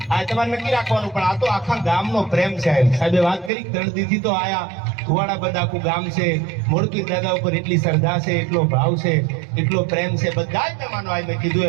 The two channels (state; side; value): drops out; left; at 3.5 s